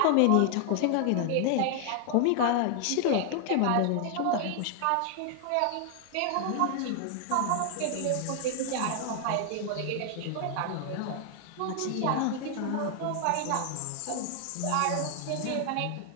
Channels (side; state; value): both; different; correlation 0.00